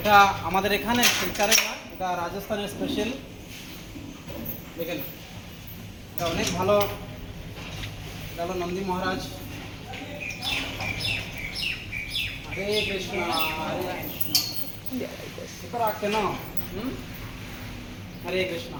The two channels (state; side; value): identical; both; correlation 1.00